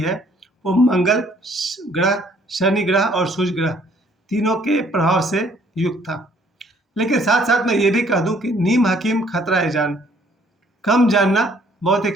वो मंगल ग्रह, शनि ग्रह और सूर्य ग्रह तीनों के प्रभाव से युक्त था। लेकिन साथ साथ मैं ये भी कह दूं कि नीम हकीम खतरा है जान, कम जानना बहुत ही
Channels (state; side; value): normal; both; correlation 0.62